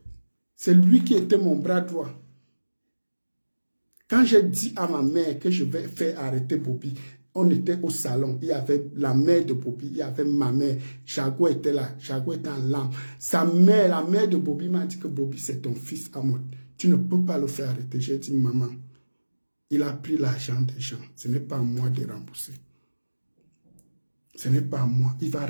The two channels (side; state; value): both; inverted; correlation -1.00